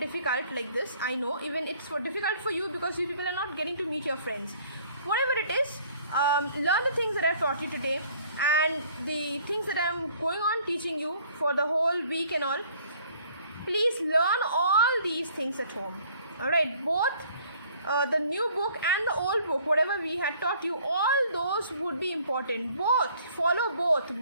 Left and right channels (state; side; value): inverted; both; correlation -0.58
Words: like this. I know, even it's difficult for you because you people are not getting to meet your friends. Whatever it is, learn the things that I've taught you today and the things that I'm going on teaching you for the whole week and all. Please learn all these things at home. Alright, both the new book and the old book, whatever we had taught you, all those would be important. Both, follow